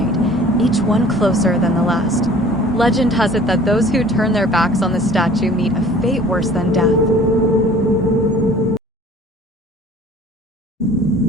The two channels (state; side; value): normal; both; correlation 0.49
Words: each one closer than the last. Legend has it that those who turn their backs on the statue meet a fate worse than death.